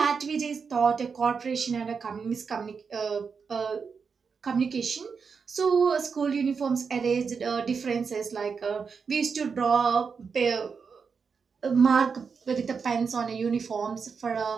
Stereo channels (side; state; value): left; quieter; 5.7 dB